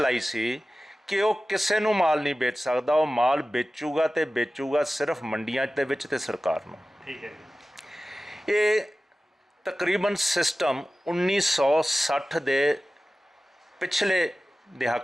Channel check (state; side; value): normal; both; correlation 0.96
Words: सी कि वो किसी नूं माल नहीं बेच सकता। वो माल बेचूगा तो बेचूगा सिर्फ मंडियां दे विच ते सरकार नूं। ठीक है। ये तकरीबन सिस्टम 1960 दे पिछले